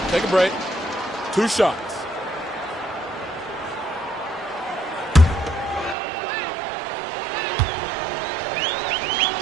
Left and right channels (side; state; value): left; drops out; at 6.0 s